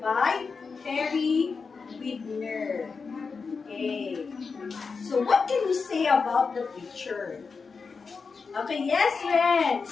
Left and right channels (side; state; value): right; quieter; 5.0 dB